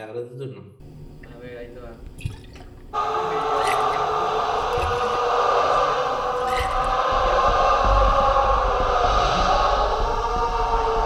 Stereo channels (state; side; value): identical; both; correlation 1.00